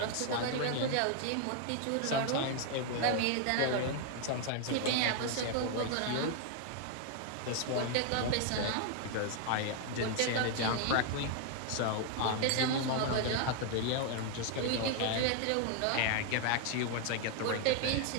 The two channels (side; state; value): both; different; correlation 0.00